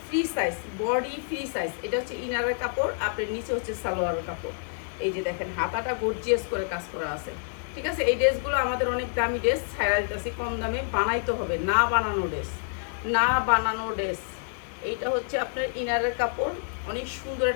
free size, body free size. এটা হচ্ছে ইনারের কাপড়, আপনার নিচে হচ্ছে সালোয়ারের কাপড়। এই যে দেখেন হাতাটা গর্জিয়াস করে কাজ করা আছে, ঠিক আছে? এই ড্রেসগুলো আমাদের অনেক দামি ড্রেস, ছাড়া দিতেছি কম দামে। বানাইতে হবে, না বানানো ড্রেস, না বানানো ড্রেস। এইটা হচ্ছে আপনার ইনারের কাপড়, অনেক সুন্দর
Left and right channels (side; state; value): right; silent; digital silence